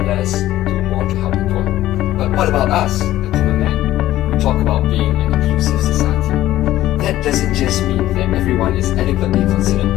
do more to help the poor. But what about us, the common man? We talk about being an inclusive society. That doesn't just mean that everyone is adequately considered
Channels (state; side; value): quieter; right; 14.4 dB